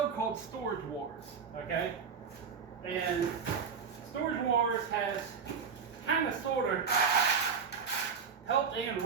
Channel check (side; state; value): left; quieter; 6.2 dB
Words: called Storage Wars, okay? And Storage Wars has kind of sort of helped and